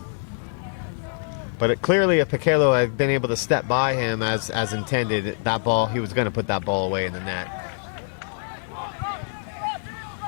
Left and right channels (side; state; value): right; silent; 62 dB below the other